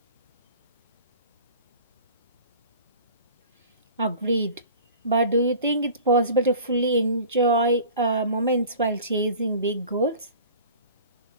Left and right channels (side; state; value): both; inverted; correlation -0.43